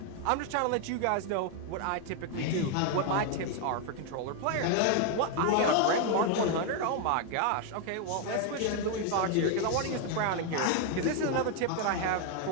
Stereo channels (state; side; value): different; both; correlation 0.01